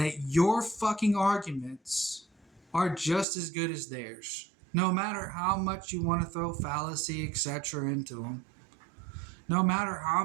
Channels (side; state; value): left; drops out; at 3.2 s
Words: your fucking arguments are just as good as theirs. No matter how much you want to throw fallacy, etc. into them. No matter how